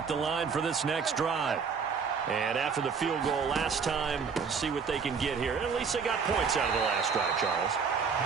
the line for this next drive. And after the field goal last time, let's see what they can get here. At least they got points out of the last drive, Charles.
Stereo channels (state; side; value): quieter; left; 5.9 dB